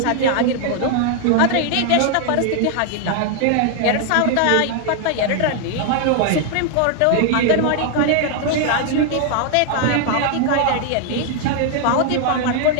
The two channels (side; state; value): both; different; correlation 0.00